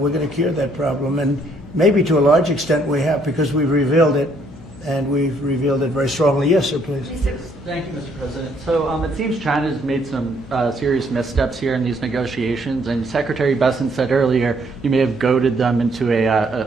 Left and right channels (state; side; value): noise; left; hum, 20 dB below the sound